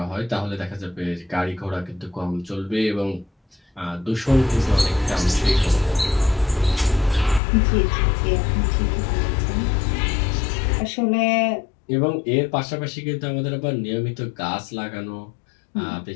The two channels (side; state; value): right; drops out; at 7.4 s